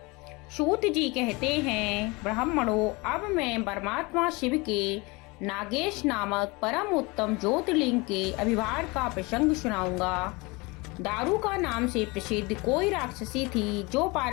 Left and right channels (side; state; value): right; quieter; 25.7 dB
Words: सूत जी कहते हैं, ब्राह्मणों, अब मैं परमात्मा शिव के नागेश नामक परम उत्तम ज्योतिर्लिंग के आविर्भाव का प्रसंग सुनाऊंगा। दारुका नाम से प्रसिद्ध कोई राक्षसी थी जो